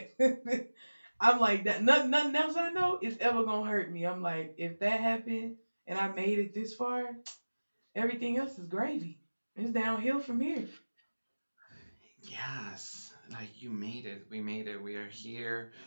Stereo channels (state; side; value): inverted; both; correlation -1.00